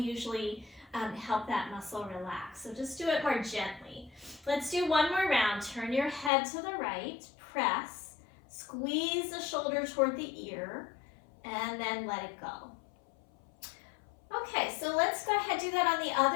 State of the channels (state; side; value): drops out; right; at 6.3 s